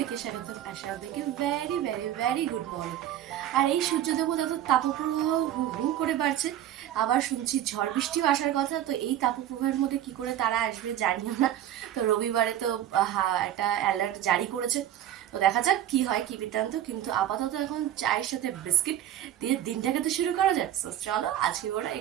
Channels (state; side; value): quieter; left; 11.7 dB